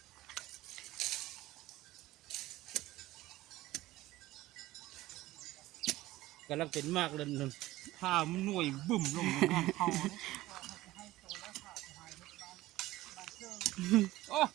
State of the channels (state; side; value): quieter; left; 17.1 dB